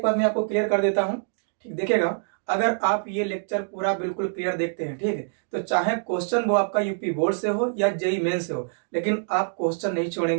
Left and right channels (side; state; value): left; silent; digital silence